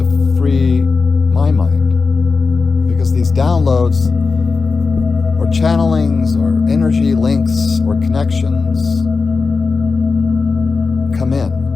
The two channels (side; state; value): right; quieter; 4.4 dB